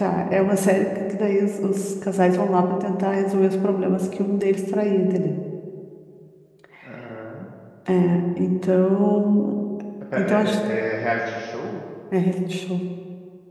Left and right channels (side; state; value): both; identical; correlation 1.00